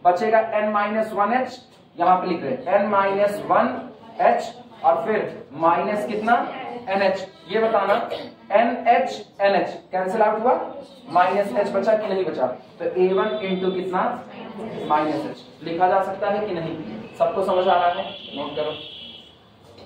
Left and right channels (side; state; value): both; identical; correlation 1.00